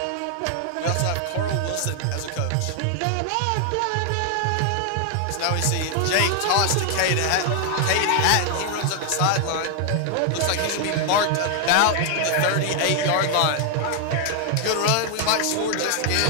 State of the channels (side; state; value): both; different; correlation 0.00